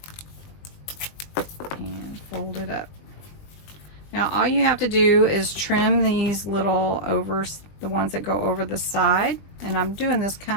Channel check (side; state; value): right; late; 20 ms